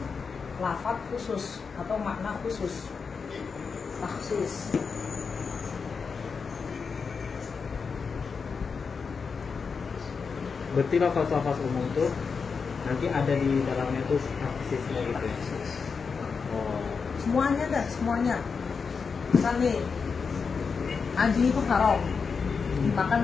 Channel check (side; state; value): right; quieter; 5.4 dB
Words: lafaz khusus atau makna khusus. Takhsis. Berarti lafaz-lafaz umum tuh nanti ada di dalamnya tuh takhsisnya gitu ya. Oh. Semuanya dah, semuanya. Misal nih, anjing itu haram,